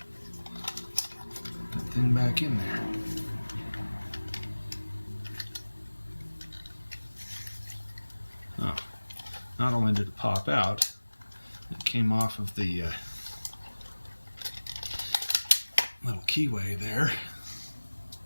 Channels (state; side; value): inverted; both; correlation -1.00